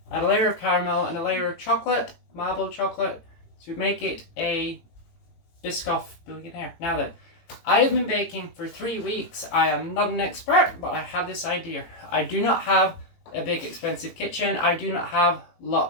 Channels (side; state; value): right; late; 18 ms